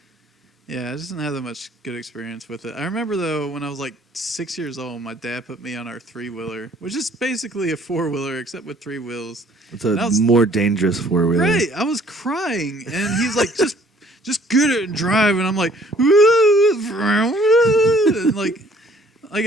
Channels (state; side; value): normal; both; correlation 0.58